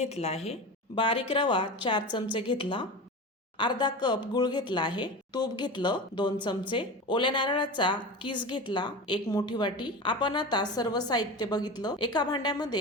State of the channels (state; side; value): normal; both; correlation 0.28